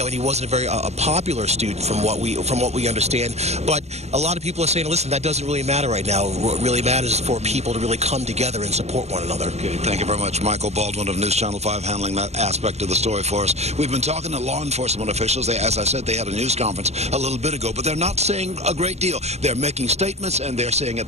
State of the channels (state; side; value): late; left; 0.31 ms